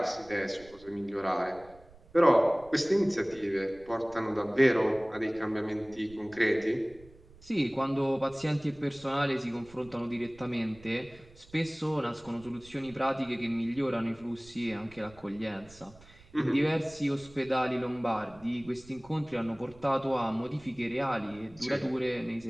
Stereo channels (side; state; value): right; noise; rumble, 24 dB below the sound